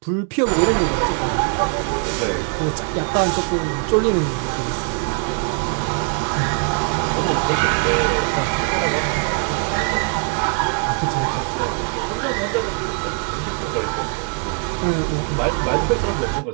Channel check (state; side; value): quieter; left; 39.2 dB